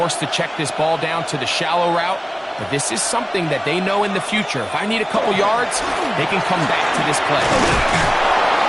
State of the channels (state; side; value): identical; both; correlation 1.00